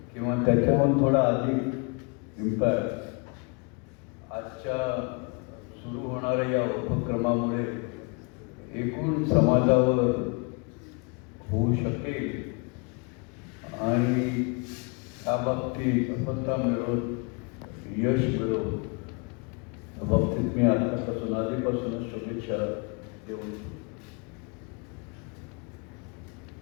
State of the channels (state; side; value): quieter; right; 33.3 dB